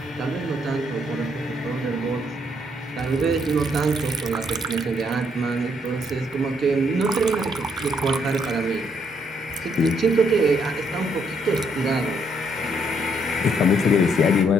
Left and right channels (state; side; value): normal; both; correlation 0.72